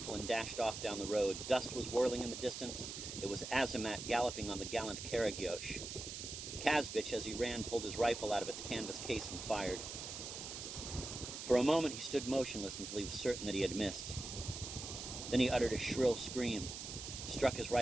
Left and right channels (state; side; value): noise; right; hiss, 7 dB below the sound